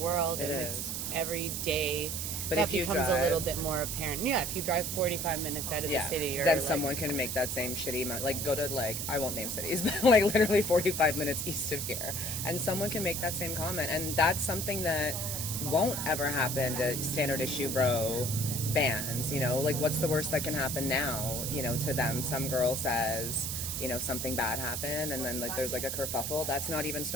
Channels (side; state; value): right; noise; hiss, 3 dB below the sound